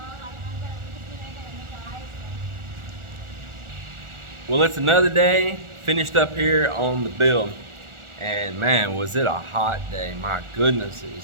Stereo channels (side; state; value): left; late; 1.4 ms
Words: Well, it's another day. Finished up here on the build. And man, was it a hot day. My goodness, it